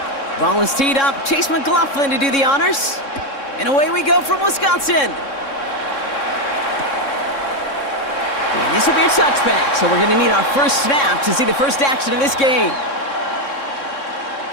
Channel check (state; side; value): late; right; 3.6 ms